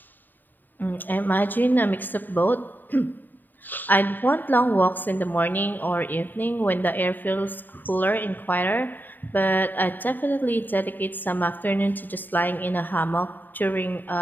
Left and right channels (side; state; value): right; late; 0.090 ms